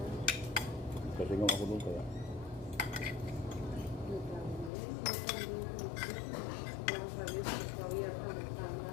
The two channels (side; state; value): right; drops out; at 4.7 s